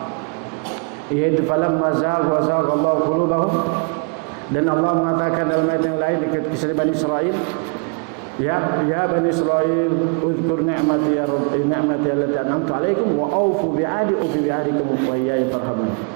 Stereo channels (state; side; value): quieter; left; 37.0 dB